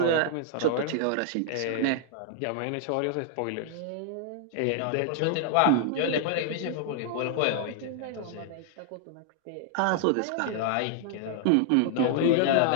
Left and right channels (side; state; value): both; different; correlation -0.01